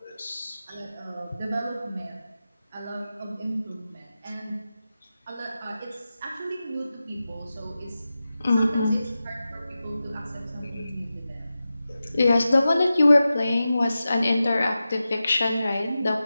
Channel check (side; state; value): both; inverted; correlation -0.93